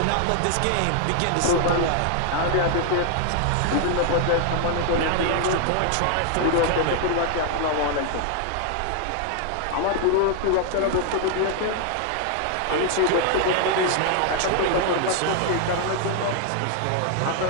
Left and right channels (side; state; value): both; different; correlation 0.00